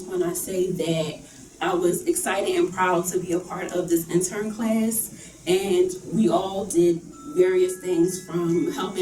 when I say that I was excited and proud to be a part of this intern class, and we all did various things from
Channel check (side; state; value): both; identical; correlation 1.00